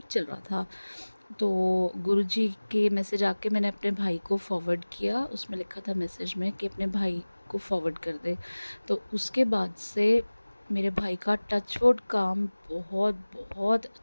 चल रहा था। तो गुरुजी के मैसेज आके मैंने अपने भाई को फॉरवर्ड किया, उसमें लिखा था मैसेज में कि अपने भाई को फॉरवर्ड कर दे। तो उसके बाद से मेरे भाई का टचवुड काम बहुत बहुत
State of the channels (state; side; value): inverted; both; correlation -1.00